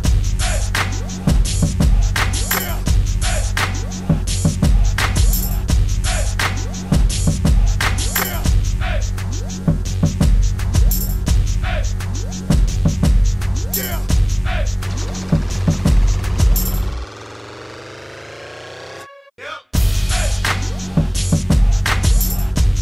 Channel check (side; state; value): both; identical; correlation 1.00